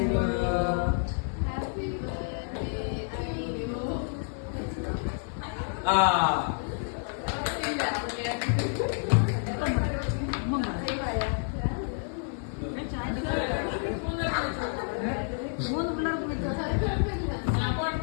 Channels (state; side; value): silent; right; 58 dB below the other